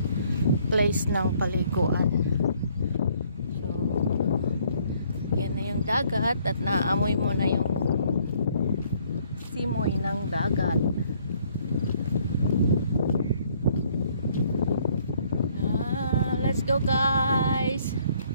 place ng paliguan. Yan na yung dagat at naamoy mo na yung simoy ng dagat. Let's go guys!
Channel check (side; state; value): both; inverted; correlation -0.64